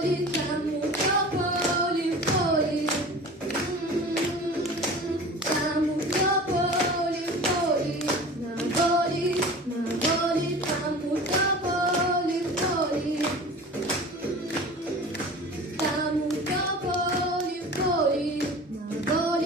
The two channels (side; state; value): both; normal; correlation 0.38